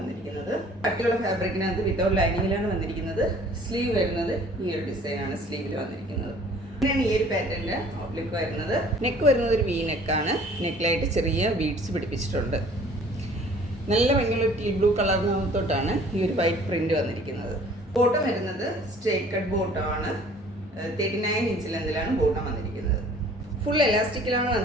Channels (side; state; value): both; normal; correlation 0.52